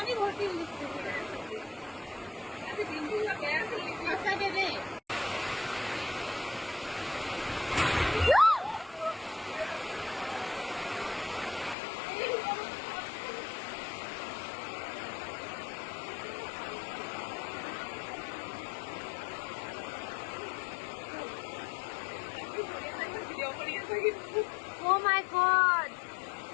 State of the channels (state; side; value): drops out; right; at 11.8 s